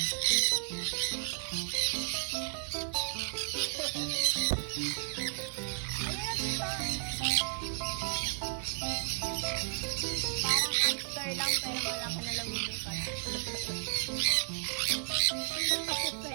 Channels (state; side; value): silent; left; 56 dB below the other